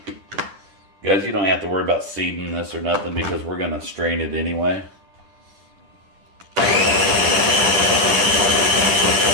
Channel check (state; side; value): late; left; 10 ms